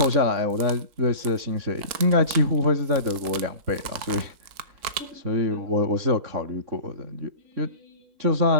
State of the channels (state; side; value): late; left; 3.8 ms